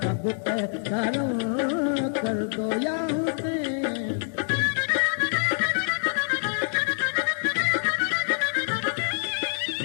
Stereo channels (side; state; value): right; silent; 61 dB below the other